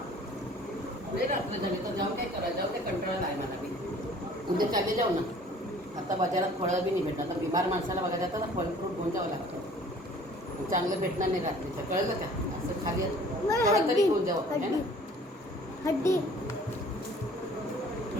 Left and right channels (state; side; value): normal; both; correlation 0.52